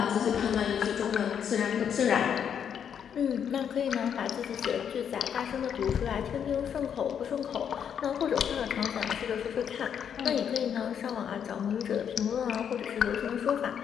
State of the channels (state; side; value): quieter; right; 8.2 dB